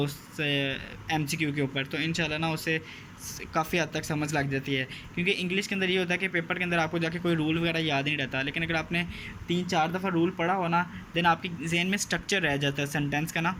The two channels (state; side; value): identical; both; correlation 1.00